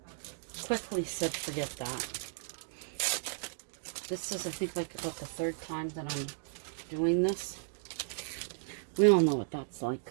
quickly said forget that. This is, I think, like about the third time that I'm doing this. We all know what that's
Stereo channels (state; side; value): silent; left; digital silence